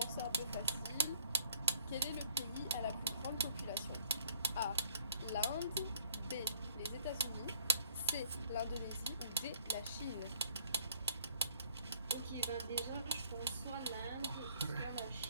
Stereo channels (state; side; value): inverted; both; correlation -0.60